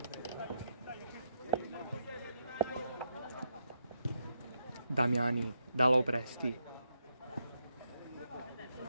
Damiani da Lopresti.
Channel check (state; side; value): inverted; both; correlation -0.81